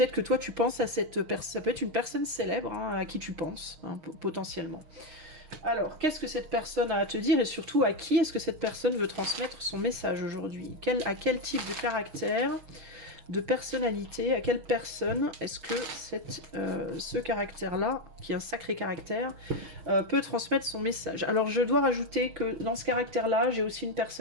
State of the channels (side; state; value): left; late; 6.4 ms